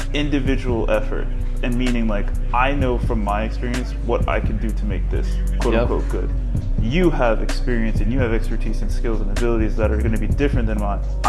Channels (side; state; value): both; identical; correlation 1.00